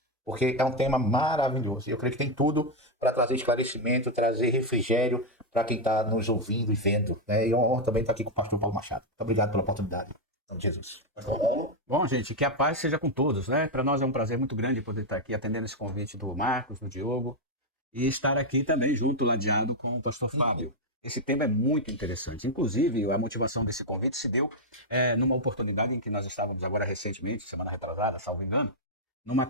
porque é um tema maravilhoso. Eu creio que tem tudo para trazer esclarecimento, trazer refrigério para quem está nos ouvindo e vendo, né? E é uma honra também estar aqui com o pastor Paulo Machado. Muito obrigado pela oportunidade. Em nome de Jesus. Pastor Paulo. Bom, gente, que a paz seja com todos, né? Para nós é um prazer muito grande poder estar aqui atendendo esse convite do Marcos, do Diogo, e estar aqui também junto, ladeado com o pastor Fábio. Esse tema é muito interessante. Inclusive, a motivação desse convite se deu numa oportunidade em que nós estávamos agora recentemente, semana retrasada, salvo engano, numa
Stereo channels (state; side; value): normal; both; correlation 0.01